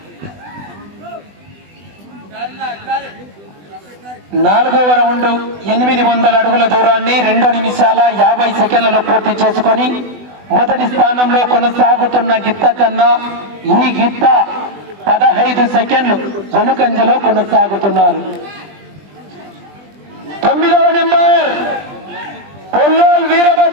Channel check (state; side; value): late; left; 20 ms